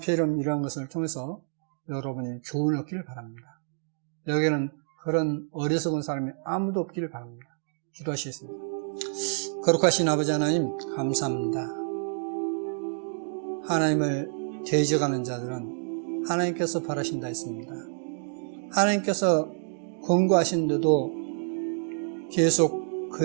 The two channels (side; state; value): left; silent; digital silence